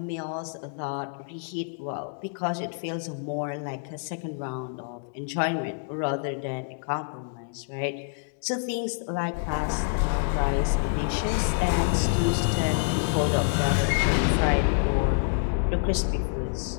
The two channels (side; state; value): right; silent; digital silence